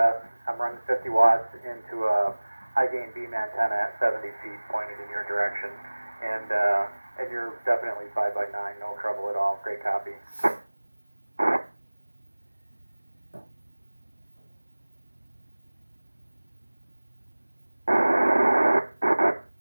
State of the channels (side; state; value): both; inverted; correlation -1.00